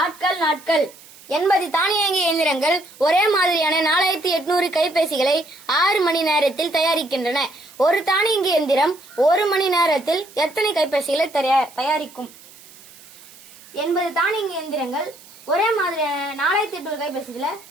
ஆட்கள் நாட்கள் 80 தானியங்கி இயந்திரங்கள் ஒரே மாதிரியான 4800 கைபேசிகளை 6 மணி நேரத்தில் தயாரிக்கின்றன. ஒரு தானியங்கி இயந்திரம் 1 மணி நேரத்தில் எத்தனை கைபேசிகளை தயாரிக்கும்? 80 தானியங்கி இயந்திரங்கள் ஒரே மாதிரியான 4800 கைபேசிகளை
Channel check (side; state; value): right; noise; hiss, 22 dB below the sound